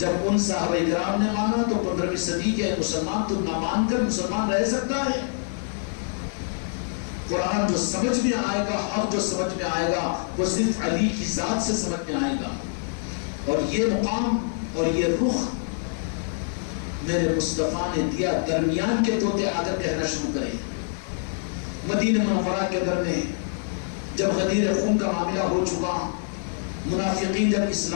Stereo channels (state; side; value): silent; right; 61 dB below the other